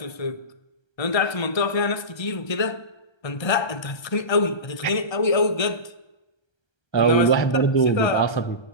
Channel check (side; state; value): right; late; 1.3 ms